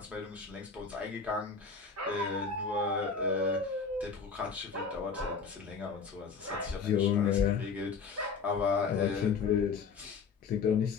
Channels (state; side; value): quieter; right; 5.3 dB